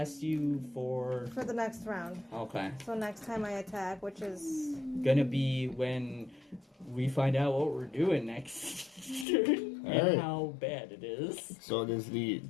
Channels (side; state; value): right; drops out; at 9.2 s